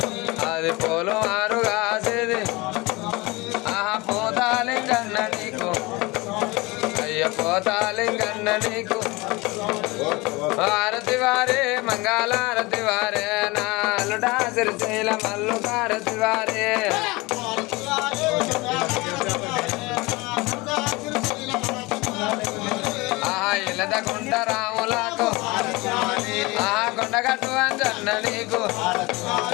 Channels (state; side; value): quieter; right; 23.4 dB